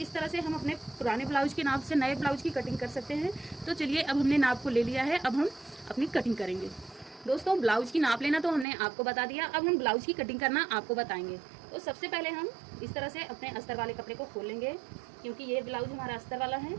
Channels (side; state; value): left; drops out; at 8.7 s